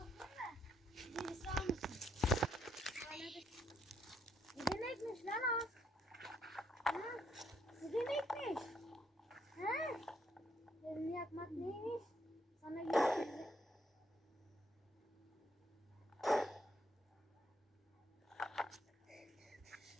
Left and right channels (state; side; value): normal; both; correlation 0.73